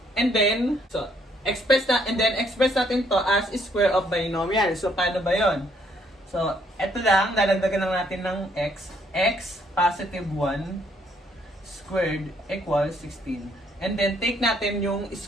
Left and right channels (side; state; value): both; normal; correlation 0.68